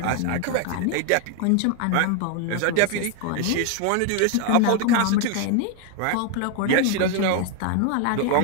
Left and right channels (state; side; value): different; both; correlation 0.01